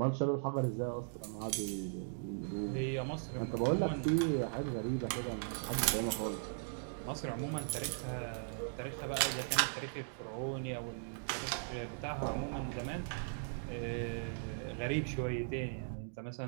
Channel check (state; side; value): silent; left; digital silence